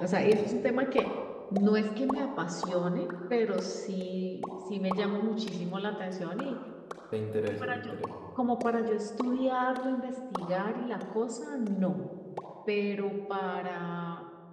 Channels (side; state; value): both; identical; correlation 1.00